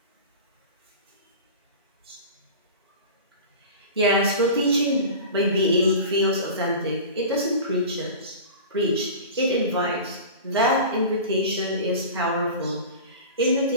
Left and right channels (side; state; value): both; inverted; correlation -0.34